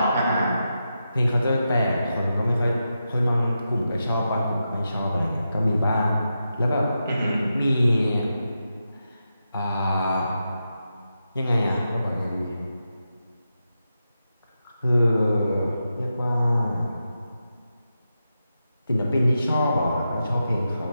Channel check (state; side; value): inverted; both; correlation -0.88